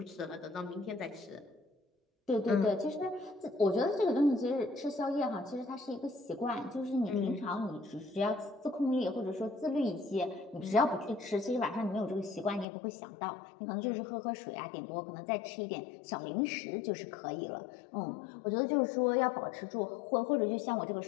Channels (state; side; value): drops out; right; at 12.7 s